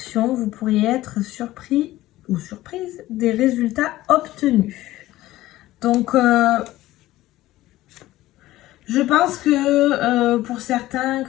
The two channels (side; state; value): right; quieter; 16.2 dB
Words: vous pourriez être surpris ou surprise des résultats obtenus. Donc, je pense que pour certains